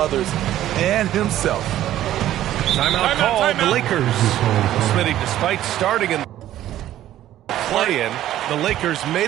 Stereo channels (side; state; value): left; quieter; 13.0 dB